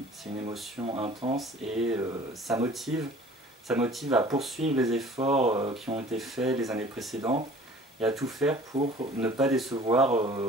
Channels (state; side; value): normal; both; correlation 0.48